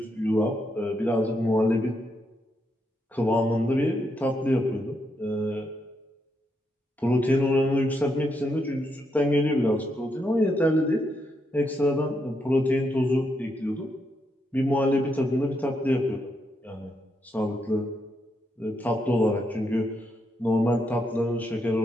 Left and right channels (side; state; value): both; normal; correlation 0.80